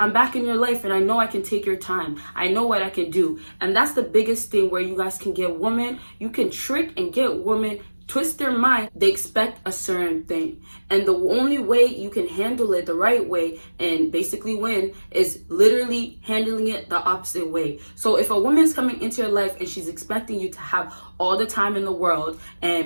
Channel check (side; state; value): both; inverted; correlation -1.00